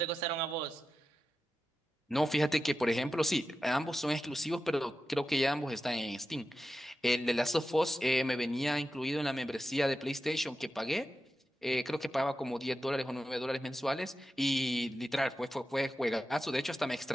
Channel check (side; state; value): both; normal; correlation 0.92